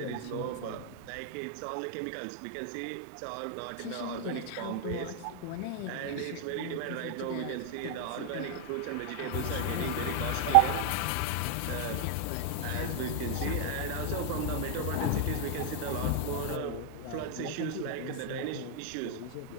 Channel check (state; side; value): different; both; correlation 0.00